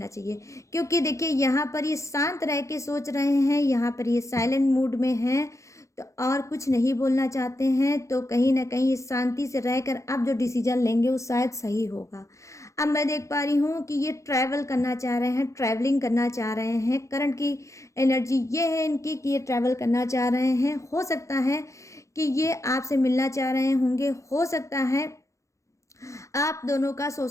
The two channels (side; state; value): right; late; 0.15 ms